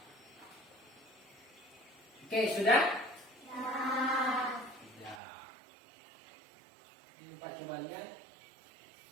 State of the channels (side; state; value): left; drops out; at 5.2 s